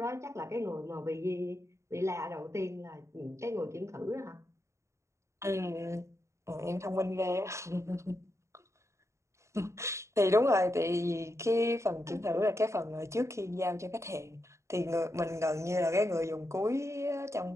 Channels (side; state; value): left; late; 0.14 ms